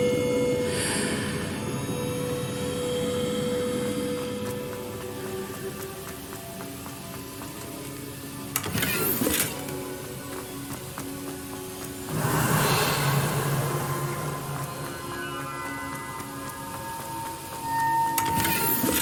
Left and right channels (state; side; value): identical; both; correlation 1.00